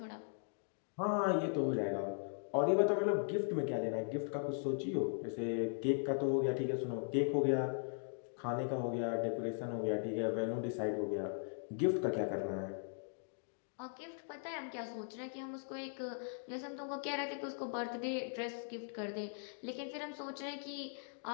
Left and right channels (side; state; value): right; silent; digital silence